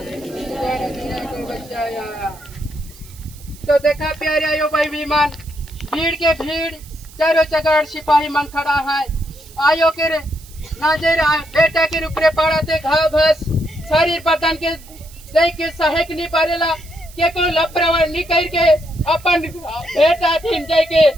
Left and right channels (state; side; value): noise; right; hiss, 22 dB below the sound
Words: को बचाया। तो देखा प्यारे आयो भाई विमान, भीड़ के भीड़ चारों चगाड़ सिपाही मन खड़ा है। आयो के नजर बेटा के ऊपरे पड़ा थे घाव घास शरीर बदन के देख के सहेक नहीं पारेला के को लपरवा निकल के अपन बेटा थीन जाय के